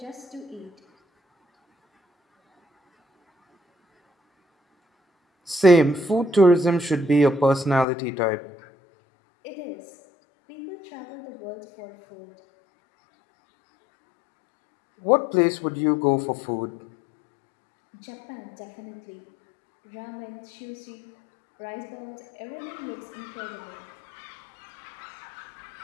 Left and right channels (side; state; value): right; drops out; at 7.9 s